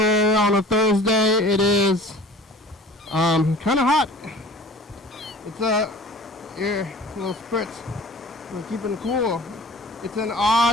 on a Thursday. It is kind of hot. It's here, a little spritz. We're keeping cool. It's an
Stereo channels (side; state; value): both; normal; correlation 0.45